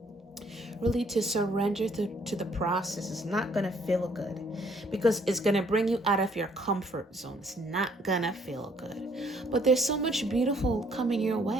Really to surrender to the process. It's not going to feel good because it's going to bring you out of your comfort zone. It's not going to feel good. But there's so much beautiful coming your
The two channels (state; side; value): normal; both; correlation 0.64